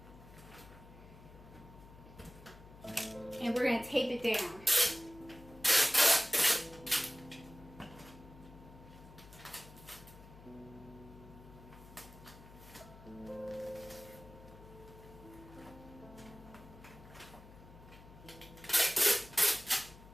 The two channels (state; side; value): noise; left; hum, 19 dB below the sound